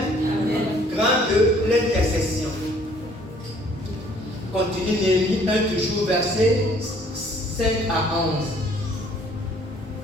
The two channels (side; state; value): both; normal; correlation 0.59